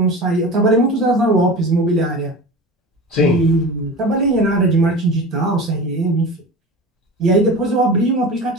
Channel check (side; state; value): both; normal; correlation 0.32